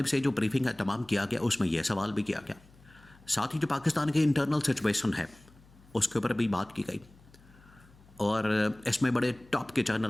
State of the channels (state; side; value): noise; left; hum, 26 dB below the sound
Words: سے جو بریفنگ کا اہتمام کیا گیا اس میں یہ سوال بھی کیا گیا، ساتھ ہی جو پاکستان کے انٹرنل سچویشن ہے اس کے اوپر بھی بات کی گئی، اور اس میں بڑے ٹاپ کے